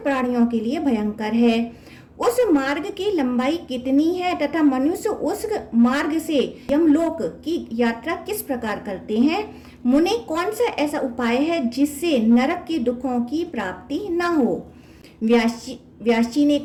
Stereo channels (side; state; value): both; identical; correlation 1.00